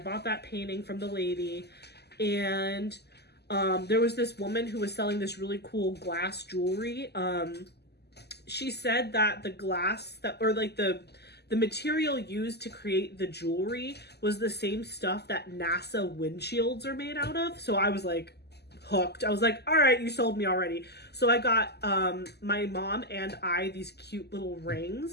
that painting from the lady. And there was this woman who was selling this really cool glass jewelry. She said that the glass the material used to create the jewelry was the same stuff that NASA windshields are made out of. So I was like hooked. I was like, all right, you sold me already. So I got my mom and I these cute little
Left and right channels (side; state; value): right; late; 0.48 ms